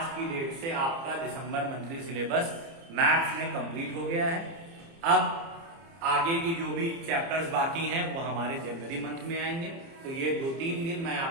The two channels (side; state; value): left; late; 30 ms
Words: की डेट से आपका दिसंबर मंथली सिलेबस मैथ्स में कंप्लीट हो गया है। अब आगे की जो भी चैप्टर्स बाकी हैं वो हमारे जनवरी मंथ में आएंगे। तो ये 2-3 दिन मैं